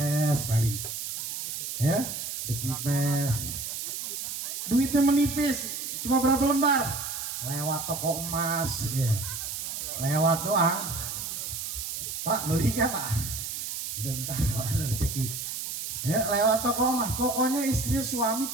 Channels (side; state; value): right; noise; hiss, 5 dB below the sound